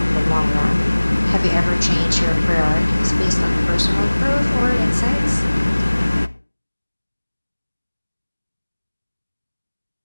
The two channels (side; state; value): both; inverted; correlation -1.00